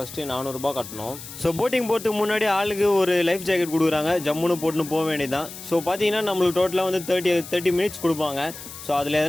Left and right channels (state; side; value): noise; left; hiss, 13 dB below the sound